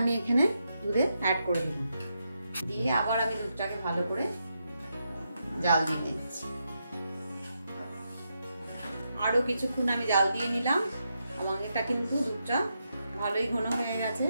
এখানে দুধে অ্যাড করে দিলাম, দিয়ে আবার আমি দুধটাকে ভালো করে জাল দিয়ে দিচ্ছি। আরো কিছুক্ষণ আমি জাল দিয়ে নিলাম। আমার এটা কিন্তু দুধটা ভালোই ঘন হয়ে গেছে।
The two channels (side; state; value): both; inverted; correlation -0.83